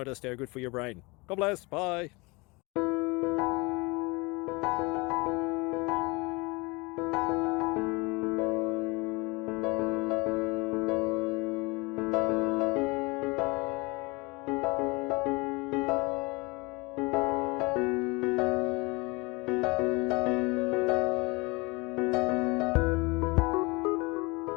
they're good for your brain. God bless, bye.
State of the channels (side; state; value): right; quieter; 26.2 dB